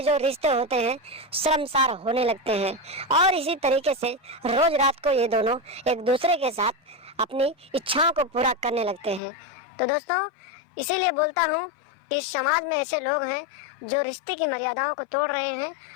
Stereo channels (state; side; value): drops out; right; at 9.2 s